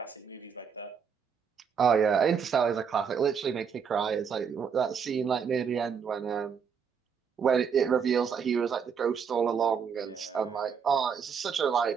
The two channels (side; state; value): left; quieter; 6.7 dB